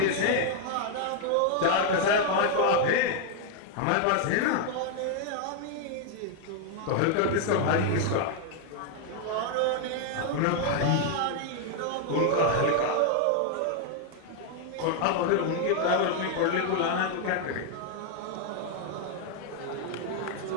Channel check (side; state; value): both; different; correlation 0.00